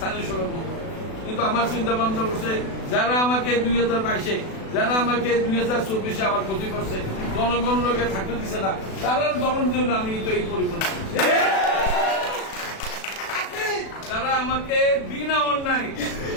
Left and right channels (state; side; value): late; right; 36 ms